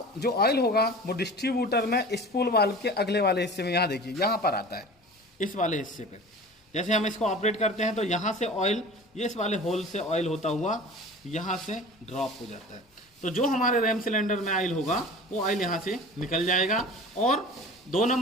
जो ऑयल होगा वो डिस्ट्रीब्यूटर में स्पूल वाल्व के अगले वाले हिस्से में, यहाँ देखिए यहाँ पर आता है, इस वाले हिस्से पे। जैसे हम इसको ऑपरेट करते हैं तो यहाँ से ऑयल, ये इस वाले होल से ऑयल होता हुआ यहाँ से ड्रॉप हो जाता है। तो जो हमारे रैम सिलेंडर में ऑयल होगा वो ऑयल यहाँ से निकल जाएगा और 1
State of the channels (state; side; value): normal; both; correlation 0.38